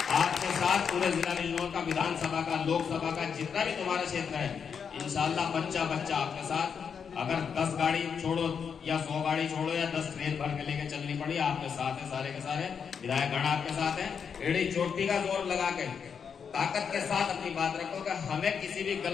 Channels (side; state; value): right; quieter; 6.7 dB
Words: आपके साथ पूरे जिला बिजनौर का, विधानसभा का, लोकसभा का, जितना भी तुम्हारा क्षेत्र है, इंशाअल्लाह बच्चा बच्चा आपके साथ। अगर 10 गाड़ी छोड़ो या 100 गाड़ी छोड़ो या 10 ट्रेन भर के लेके चलनी पड़ी, आपके साथ है, सारे के सारे विधायक गण आपके साथ है। एड़ी चोटी का जोर लगा के ताकत के साथ अपनी बात रखो कि हमें किसी भी